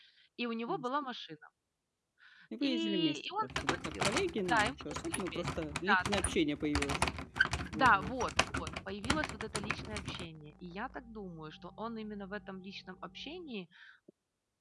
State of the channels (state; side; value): identical; both; correlation 1.00